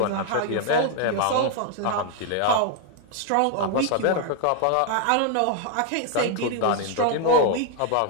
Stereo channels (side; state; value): both; different; correlation 0.00